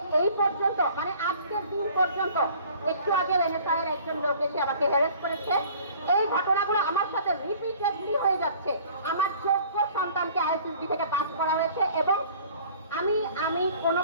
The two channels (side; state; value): both; inverted; correlation -0.50